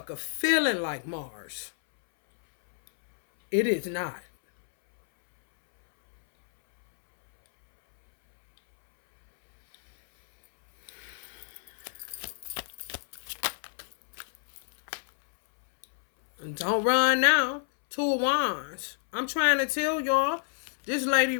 feeling like Mars. It is not. Don't run now. Two of Wands. I'm trying to tell y'all, this lady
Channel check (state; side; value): silent; right; 59 dB below the other